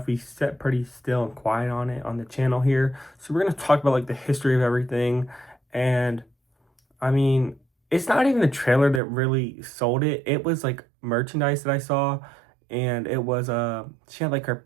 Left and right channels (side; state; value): left; drops out; at 9.0 s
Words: We sat pretty still and quiet on it on the channel here. So we're gonna talk about like the history of everything. And I mean, it's not even the trailer that really sold it. It was like merchandise that I saw, and it was she had like